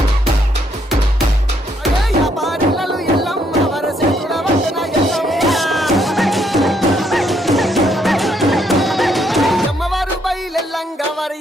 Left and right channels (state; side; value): normal; both; correlation 0.72